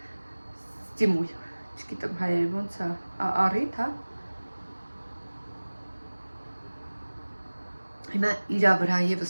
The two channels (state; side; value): inverted; both; correlation -1.00